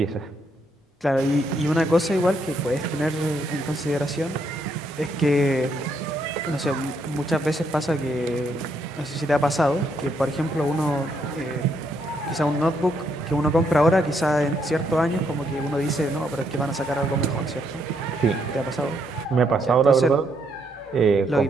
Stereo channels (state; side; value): normal; both; correlation 0.74